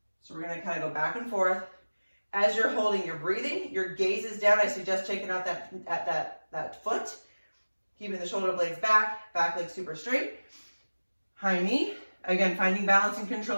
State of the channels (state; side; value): inverted; both; correlation -1.00